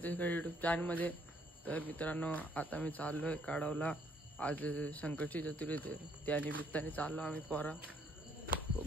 यूट्यूब चॅनलमध्ये। तर मित्रांनो आता मी चाललो आहे काढवला। आज संकष्टी चतुर्थी त्या निमित्ताने चाललो आम्ही पोरा।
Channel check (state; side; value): normal; both; correlation 0.66